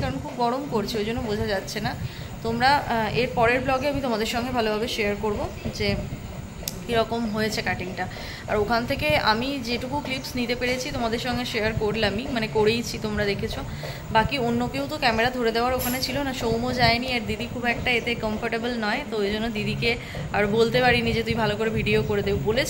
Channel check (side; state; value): both; identical; correlation 1.00